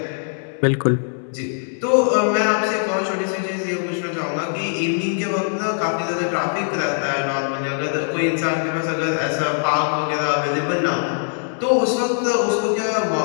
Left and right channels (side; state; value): right; silent; digital silence